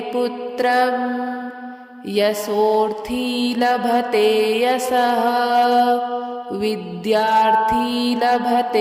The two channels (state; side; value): identical; both; correlation 1.00